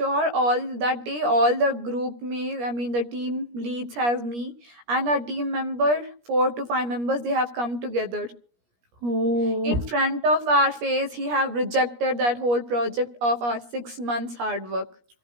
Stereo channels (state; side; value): late; left; 17 ms